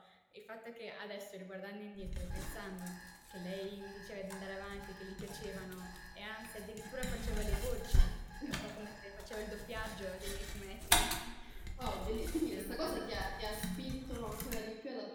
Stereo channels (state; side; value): identical; both; correlation 1.00